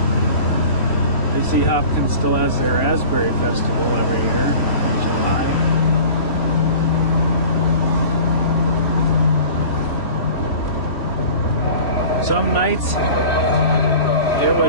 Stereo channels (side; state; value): right; late; 3.1 ms